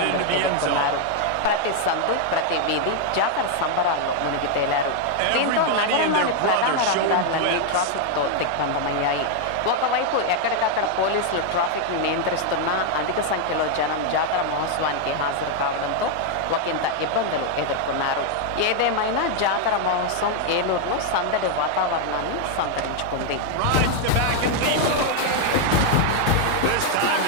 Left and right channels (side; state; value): both; different; correlation 0.00